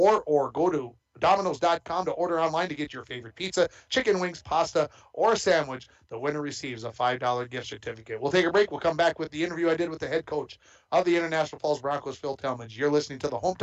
or go to Domino's.com to order online to get your favorite pizza, chicken wings, pasta, or a sandwich. The winner receives a $5 gift certificate. We'll take a break. We'll come back with the interview I did with the head coach of the International Falls Broncos, Phil Talmadge. You're listening to the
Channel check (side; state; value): both; identical; correlation 1.00